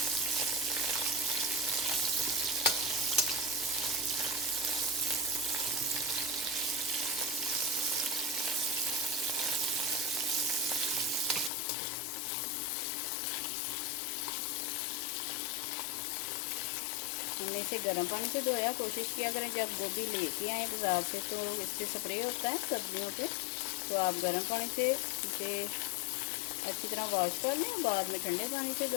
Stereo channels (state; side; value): drops out; right; at 11.5 s